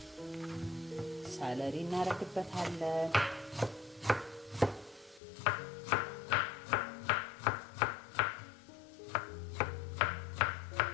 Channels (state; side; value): drops out; right; at 5.2 s